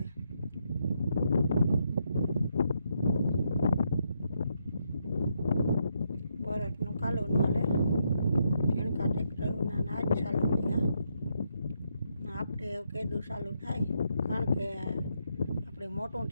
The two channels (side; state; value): both; inverted; correlation -0.78